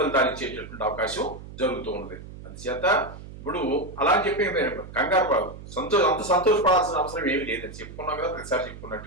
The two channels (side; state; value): right; noise; hum, 14 dB below the sound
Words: ఇచ్చేటటువంటి అవకాశం జరుగుతూ ఉన్నది. అందుచేత ఇప్పుడు అలా అని చెప్పి కంగారు అంత సంతోషపడాల్సిన అవసరం ఏమి లేదని చెప్పుకున్నాం కదా, ప్రతిసారి